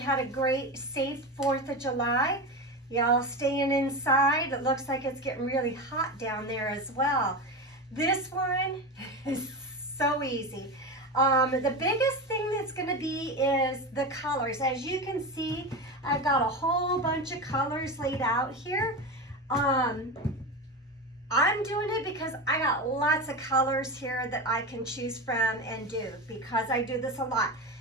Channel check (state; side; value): normal; both; correlation 0.22